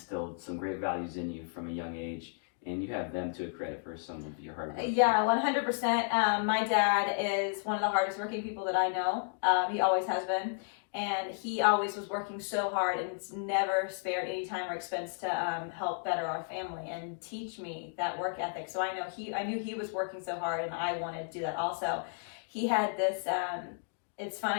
some great values in you from a young age, and you have them to credit for some of your hard work. Yeah, 100%. My dad is one of the hardest working people that I know. He always has been. And he always was working so hard and never spared any time or expense to help better our family and teach me that work ethic. So I knew he was working so hard, and I wanted to do that also. He had this, it's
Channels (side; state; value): right; silent; digital silence